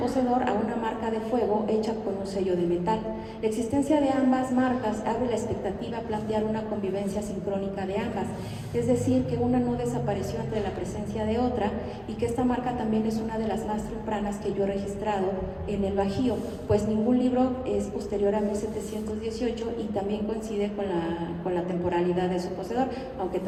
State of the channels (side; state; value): both; identical; correlation 1.00